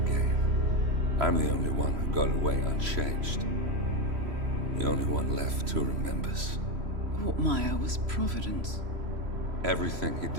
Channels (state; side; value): late; left; 3.0 ms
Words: I'm the only one who got away unchanged. The only one left who remembers. Ortmeyer was Providence. Everything he